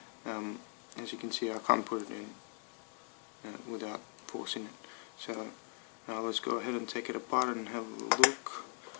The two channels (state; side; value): quieter; right; 38.9 dB